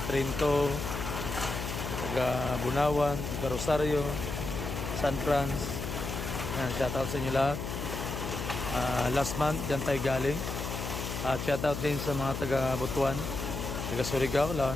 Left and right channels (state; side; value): noise; left; hum, 5 dB below the sound